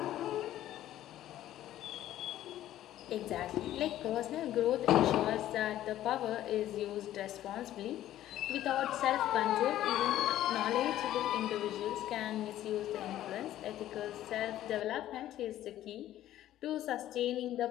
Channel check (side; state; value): right; quieter; 13.1 dB